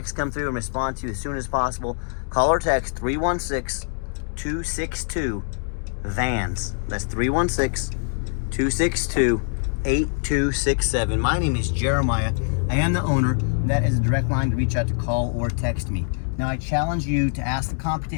come through and respond to you as soon as possible. Call or text 316-262-VANS. That's 316-262-8267. My name is Jeremiah. I am the owner. That is a direct line to reach out to call or text me. Now I challenge you to ask the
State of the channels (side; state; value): right; silent; digital silence